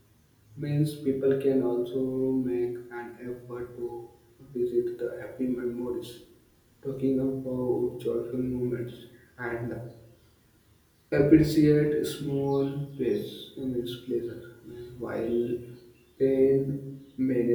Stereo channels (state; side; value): identical; both; correlation 1.00